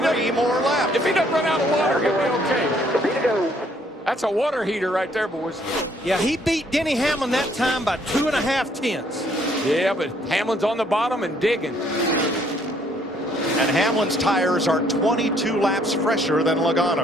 3 more laps? If he doesn't run out of water, he'll be okay. That's a water heater right there, boys. Yeah, he beat Denny Hamlin that time by 2.5 tenths. Yeah, but Hamlin's on the bottom and digging. And Hamlin's tires are 22 laps fresher than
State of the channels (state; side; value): normal; both; correlation 0.65